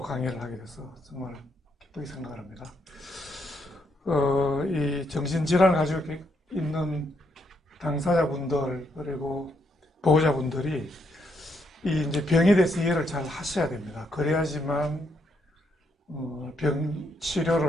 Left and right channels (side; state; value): both; normal; correlation 0.76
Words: 강의를 하게 돼서 정말 기쁘게 생각합니다. 이 정신질환을 가지고 있는 당사자분들 그리고 보호자분들이 이 이제 병에 대해서 이해를 잘 하셔야 됩니다. 그래야지만 병